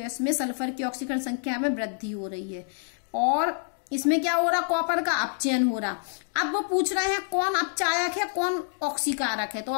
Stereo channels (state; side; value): silent; right; 60 dB below the other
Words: में सल्फर की ऑक्सीकरण संख्या में वृद्धि हो रही है, और इसमें क्या हो रहा, कॉपर का अपचयन हो रहा। अब वो पूछ रहे हैं कौन अपचायक है, कौन ऑक्सीकारक है। तो